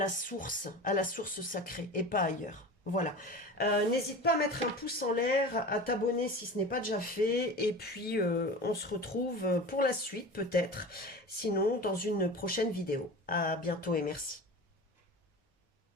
source sacrée et pas ailleurs. Voilà. N'hésite pas à mettre un pouce en l'air, à t'abonner si ce n'est pas déjà fait. Et puis, on se retrouve pour la suite peut-être. Sinon, dans une prochaine vidéo. À bientôt et merci.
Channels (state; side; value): normal; both; correlation 0.33